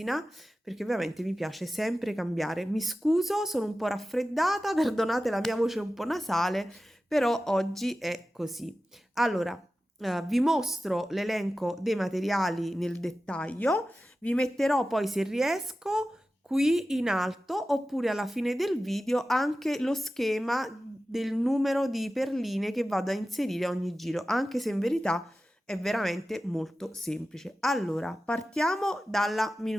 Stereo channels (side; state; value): both; normal; correlation 0.94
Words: perché ovviamente mi piace sempre cambiare. Mi scuso, sono un po' raffreddata, perdonate la mia voce un po' nasale, però oggi è così. Allora, vi mostro l'elenco dei materiali nel dettaglio. Vi metterò poi, se riesco, qui in alto oppure alla fine del video anche lo schema del numero di perline che vado a inserire a ogni giro, anche se in verità è veramente molto semplice. Allora, partiamo dalla